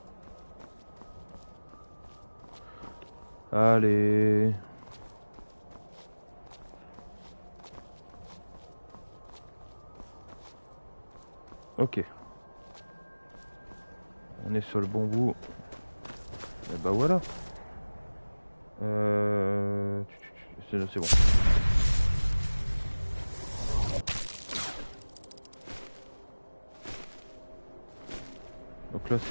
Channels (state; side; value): inverted; both; correlation -1.00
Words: Allez. Ok. On est sur le bon bout. Et bah voilà. C'est bon. Donc là